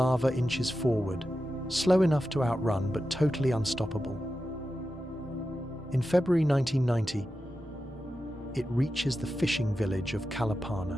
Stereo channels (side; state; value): both; normal; correlation 0.91